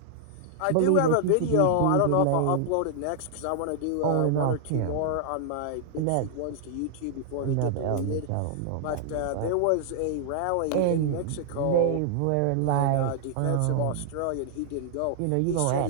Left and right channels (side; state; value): both; different; correlation -0.01